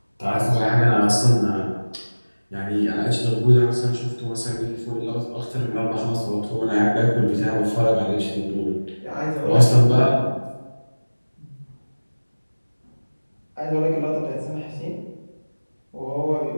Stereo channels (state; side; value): inverted; both; correlation -1.00